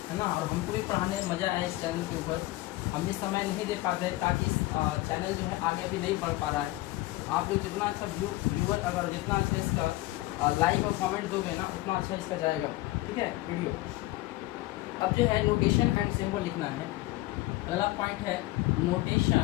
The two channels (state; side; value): quieter; right; 18.6 dB